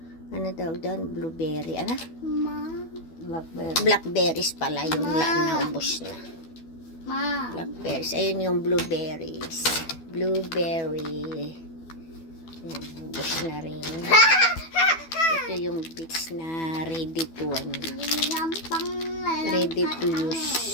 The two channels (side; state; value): right; late; 12 ms